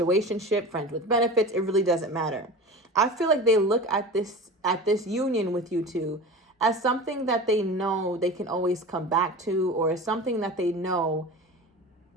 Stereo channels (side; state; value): both; normal; correlation 0.33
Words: friends with benefits, it really doesn't matter. I feel like they look at this union with you two as something that they know they can always come back to, or something that they know